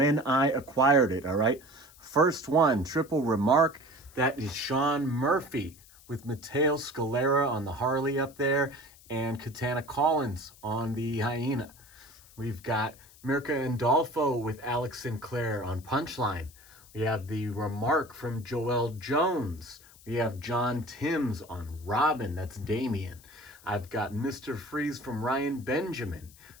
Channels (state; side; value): noise; left; hiss, 24 dB below the sound